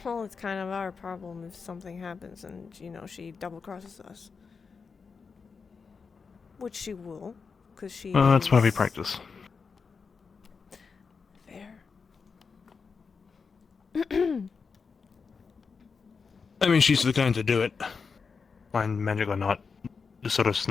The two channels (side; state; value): right; quieter; 5.3 dB